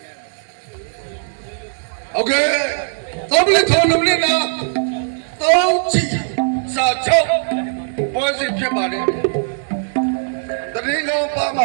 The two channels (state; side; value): silent; left; digital silence